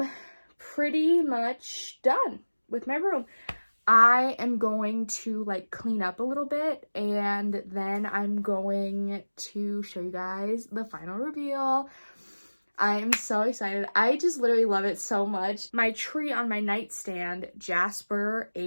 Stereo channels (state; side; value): inverted; both; correlation -1.00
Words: pretty much done with my room. I am going to like clean up a little bit, and then I'm going to show you guys the final reveal. I am so excited. I just literally love it so much. My tree on my nightstand, Jasper